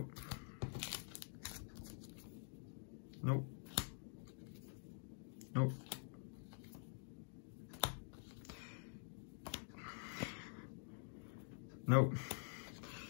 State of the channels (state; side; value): silent; right; digital silence